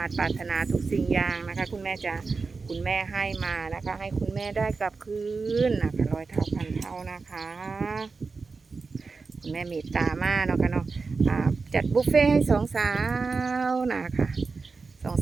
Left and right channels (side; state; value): left; quieter; 4.4 dB